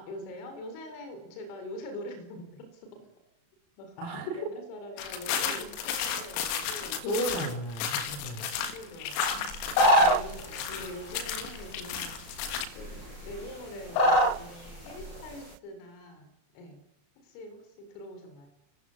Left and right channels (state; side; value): late; right; 35 ms